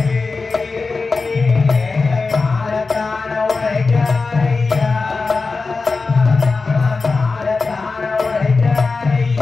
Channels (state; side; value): quieter; right; 4.1 dB